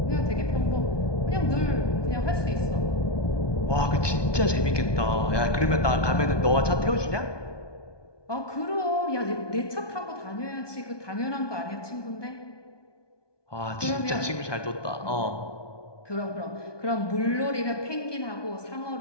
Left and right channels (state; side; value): late; right; 1.2 ms